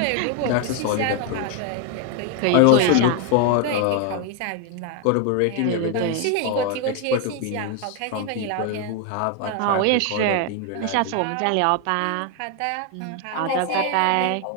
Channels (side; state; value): both; different; correlation 0.01